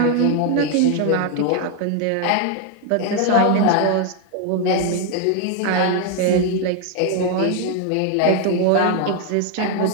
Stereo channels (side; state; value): both; different; correlation 0.01